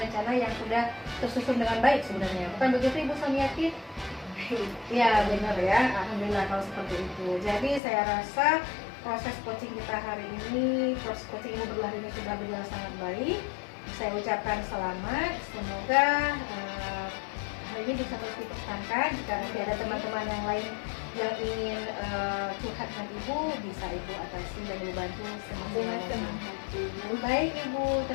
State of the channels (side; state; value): right; drops out; at 7.8 s